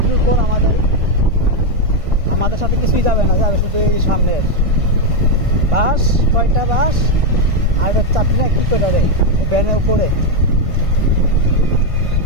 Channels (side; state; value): left; late; 1.5 ms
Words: পর আমাদের সাথে কিছুই যাবে না, যাবে শুধু এই সামনের বাস। কয়টা বাস আর এটা চাপি না কি কয়টা রে ভ্যানের উপরে।